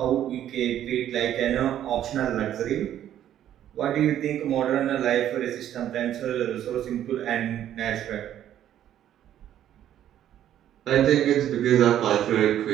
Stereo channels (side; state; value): left; quieter; 11.2 dB